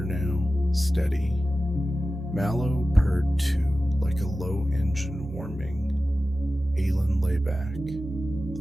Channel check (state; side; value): normal; both; correlation 0.94